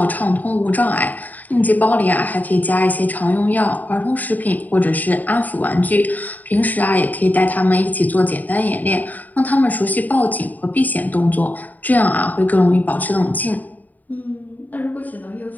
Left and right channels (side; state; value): right; late; 0.082 ms